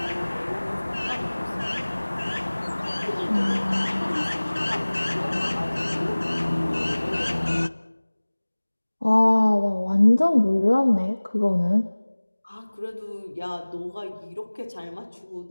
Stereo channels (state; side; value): inverted; both; correlation -1.00